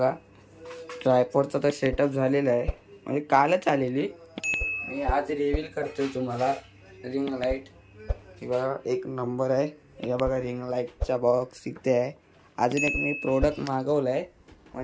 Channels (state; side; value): identical; both; correlation 1.00